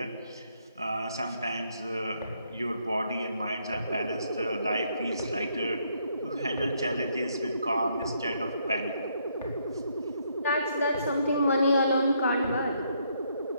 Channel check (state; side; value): inverted; both; correlation -0.72